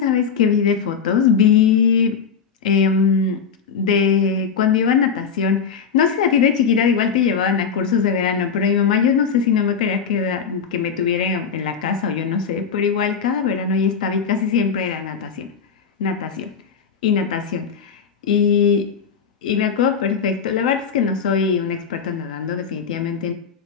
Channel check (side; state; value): right; quieter; 6.4 dB